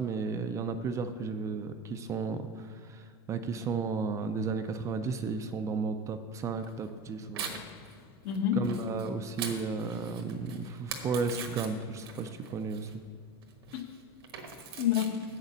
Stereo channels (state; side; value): normal; both; correlation 0.29